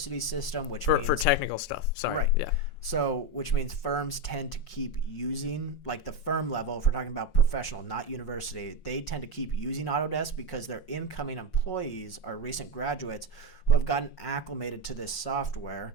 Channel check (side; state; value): right; late; 5.5 ms